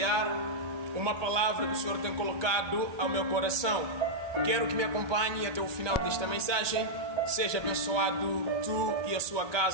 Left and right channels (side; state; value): left; late; 1.2 ms